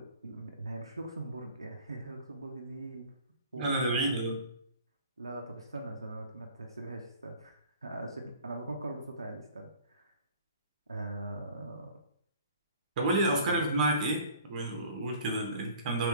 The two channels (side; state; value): both; inverted; correlation -0.48